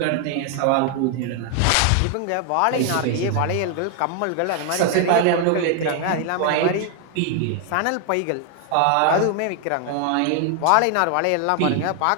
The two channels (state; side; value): different; both; correlation 0.00